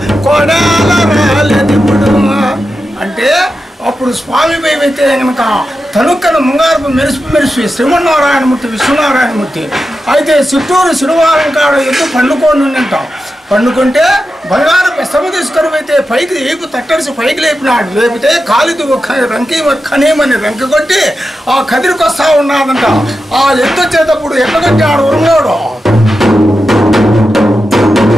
కొడాల రాలేదు ఇప్పుడు అంటే అప్పుడు స్వామి అయితే కనుక తనుక్కన ముంగారపు మెరిసి శ్రీమన్నారాయణమూర్తి విశ్వనారాయణమూర్తి అయితే చిత్తూరు శనివారం కాడ ఎద్దు పండుకొని ఉంటాం. పండుకుంటే బంగారం పెస్తము తీసుకొని అయితే పైకి ఏపు తట్టడిసి పైకి లేపినాడు. లేపితే కాలిది రంకి కనేమని రంకి కొట్టి ఆ కదిరికి వస్తూ ఉన్నాడంట. ఆ ఎద్దు వచ్చేటప్పుడు ఎట్లా కొట్టాడు ఉరుములోడు.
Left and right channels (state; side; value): normal; both; correlation 0.90